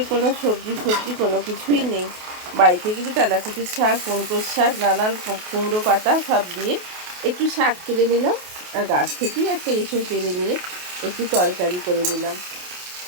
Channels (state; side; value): late; left; 28 ms